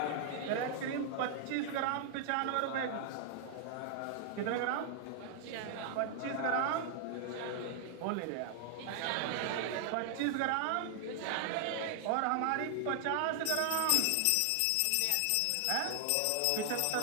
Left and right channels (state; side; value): different; both; correlation 0.00